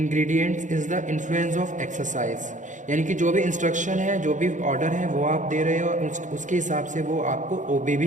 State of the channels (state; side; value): late; left; 0.36 ms